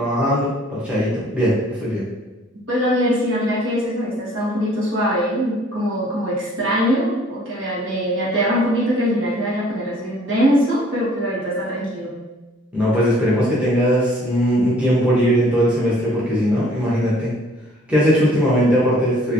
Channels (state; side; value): normal; both; correlation 0.57